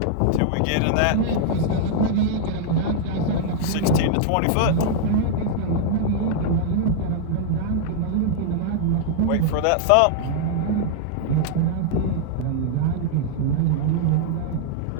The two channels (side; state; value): both; different; correlation -0.01